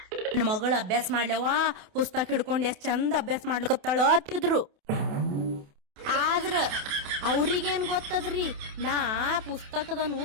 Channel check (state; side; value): late; left; 28 ms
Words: ನನ್ನ ಮಗಳು ಅಭ್ಯಾಸ ಮಾಡ್ಲವ ಪುಸ್ತಕ ಹಿಡ್ಕೊಂಡ್ ಎಷ್ಟ್ ಚಂದ ಅಭ್ಯಾಸ ಮಾಡ್ಲಕತ್ತಾಳ ಅತ್ತಿದ್ರು. ಆದ್ರ ಅವ್ರಿಗೇನ್ ಗೊತ್ತದ್ರಿ, ನಾ ಪುಸ್ತಕದನು